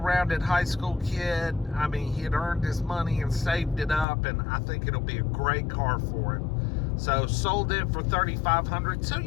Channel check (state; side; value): drops out; right; at 4.0 s